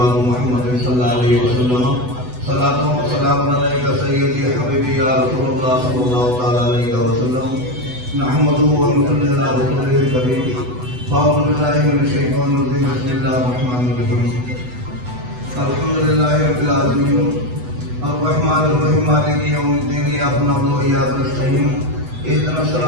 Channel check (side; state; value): left; late; 8.0 ms